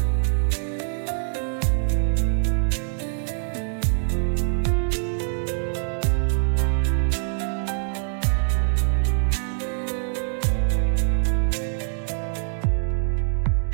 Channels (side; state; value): left; silent; digital silence